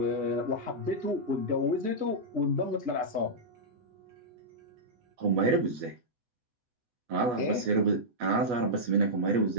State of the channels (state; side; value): late; left; 8.2 ms